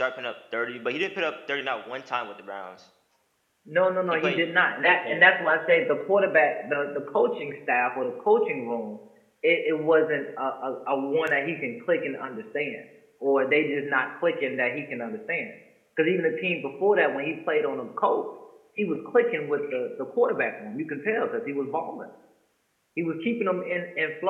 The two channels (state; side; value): identical; both; correlation 1.00